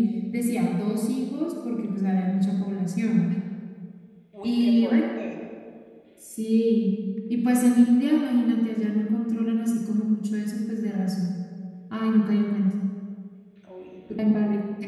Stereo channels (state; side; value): identical; both; correlation 1.00